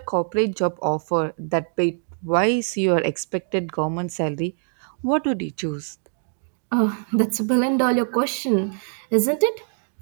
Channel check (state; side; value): silent; left; 63 dB below the other